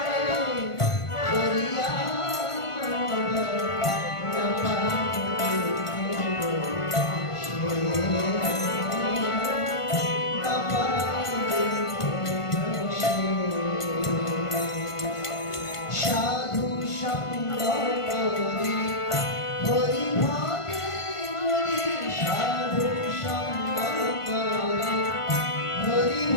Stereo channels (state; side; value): late; right; 1.5 ms